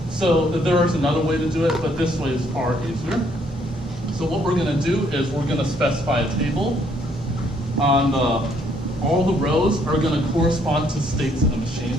So there is another way to do it, but this way is far easier. So what we're gonna do is we're gonna specify a table on all the rows are gonna correspond to states in the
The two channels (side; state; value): both; normal; correlation 0.68